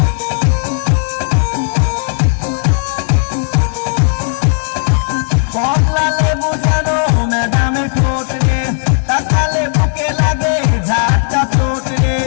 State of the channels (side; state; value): right; silent; digital silence